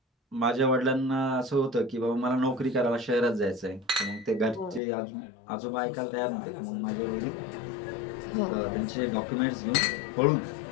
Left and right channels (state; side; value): drops out; right; at 4.8 s